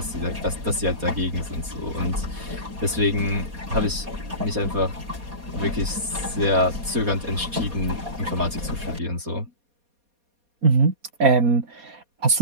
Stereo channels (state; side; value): late; left; 4.2 ms